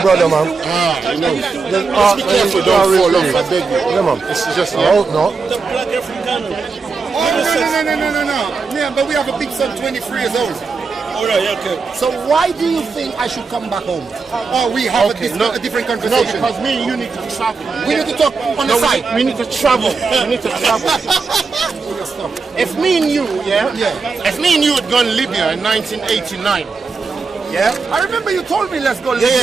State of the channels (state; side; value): quieter; left; 4.6 dB